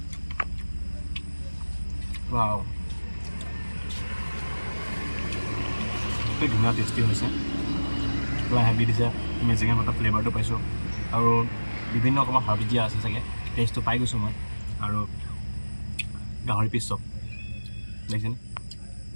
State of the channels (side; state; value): both; inverted; correlation -1.00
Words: ৱাও ধুনীয়া টেষ্টি হৈছে পুৰা হেভি দিছে মেজেঙা পাতৰ ফ্লেভাৰটো পাইছোঁ আৰু বিভিন্ন অকণমান হাৰ্বছ দিয়া আছে চাগে টেষ্টটো পাই গৈছোঁ মই আৰু গাহৰি পিচ চব দেখিছেনে